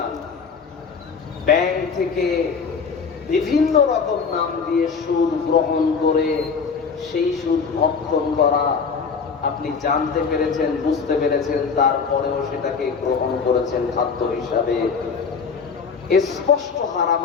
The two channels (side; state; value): right; quieter; 5.6 dB